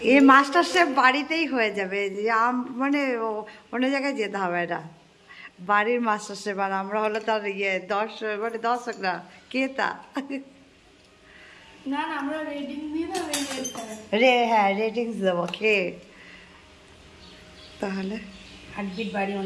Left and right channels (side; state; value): both; identical; correlation 1.00